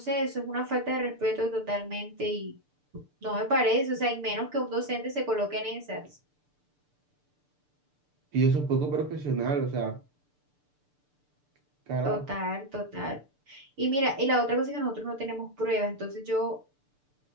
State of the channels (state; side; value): late; left; 6.8 ms